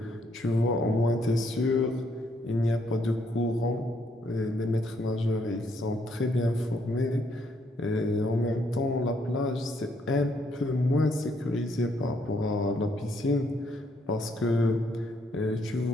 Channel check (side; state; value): both; normal; correlation 0.71